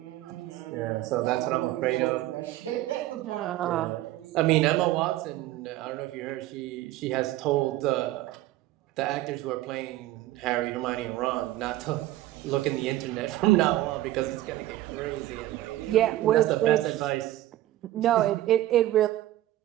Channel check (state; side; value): quieter; left; 15.1 dB